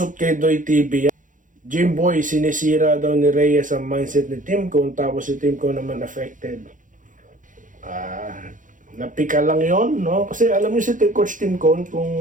kay Doy TV. Jimboy, sinisira daw ni Reyes ang mindset ni Tim Cone. Tapos si Tim Cone naman affected. Napika lang yon, no? Kasi alam niyo si Coach Tim Cone,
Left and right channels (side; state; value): left; late; 0.38 ms